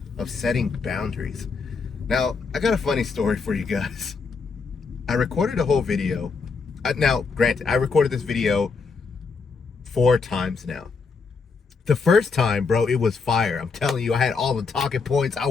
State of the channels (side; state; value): right; quieter; 4.8 dB